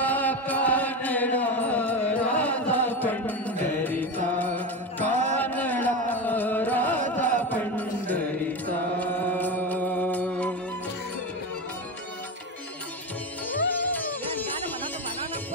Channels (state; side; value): normal; both; correlation 0.19